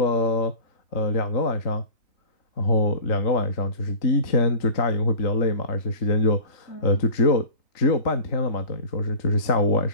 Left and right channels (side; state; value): right; late; 3.8 ms